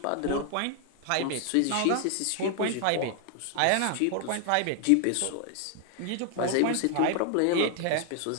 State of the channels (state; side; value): different; both; correlation 0.00